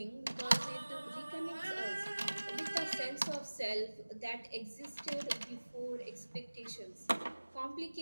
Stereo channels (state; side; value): inverted; both; correlation -1.00